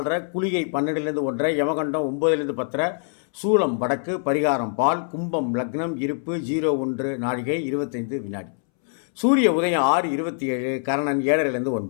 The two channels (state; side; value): silent; right; 63 dB below the other